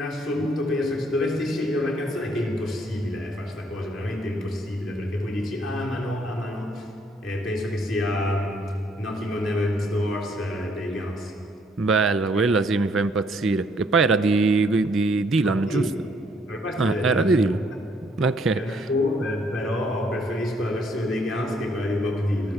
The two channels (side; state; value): both; normal; correlation 0.67